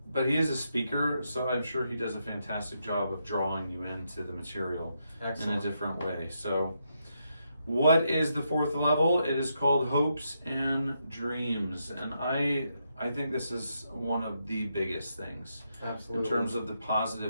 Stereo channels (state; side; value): inverted; both; correlation -0.81